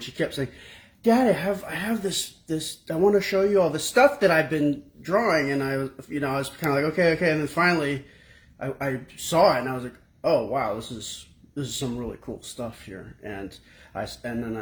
she kept saying, "Dad, I have this I want to show you all the stuff that I've been drawing." And I was kind of like, okay, and then finally I saw it, and I was like, oh wow, this is some really cool stuff here. And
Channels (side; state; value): both; identical; correlation 1.00